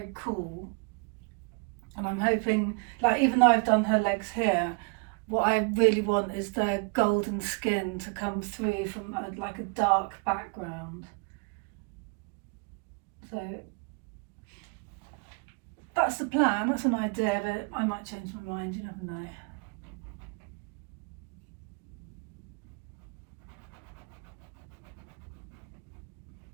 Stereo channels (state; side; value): quieter; left; 32.8 dB